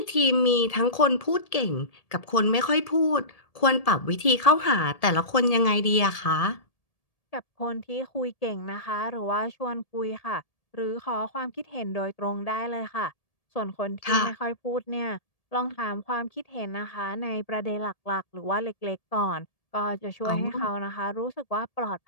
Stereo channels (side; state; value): right; late; 1.7 ms